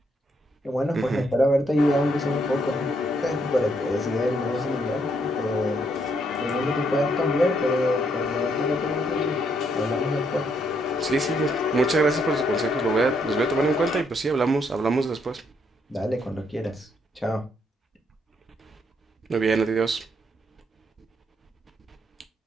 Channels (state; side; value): normal; both; correlation 0.74